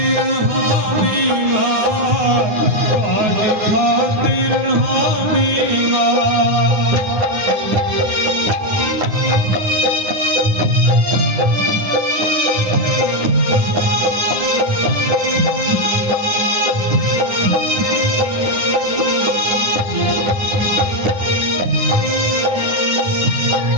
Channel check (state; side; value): late; left; 9.7 ms